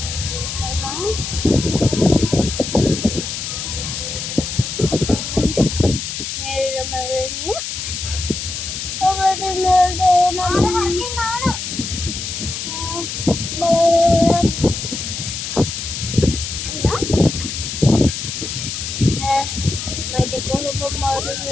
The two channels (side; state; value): left; noise; hiss, 5 dB below the sound